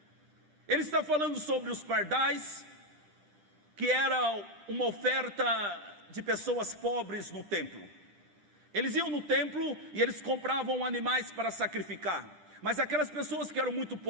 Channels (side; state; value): left; late; 9.9 ms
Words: Ele está falando sobre os pardais, que era uma oferta de pessoas pobres no templo. Eles iam no templo e eles compravam animais para sacrificar. Mas aquelas pessoas que eram muito